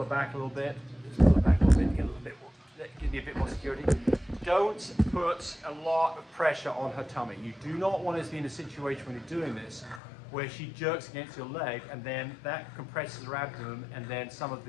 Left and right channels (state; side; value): drops out; right; at 10.0 s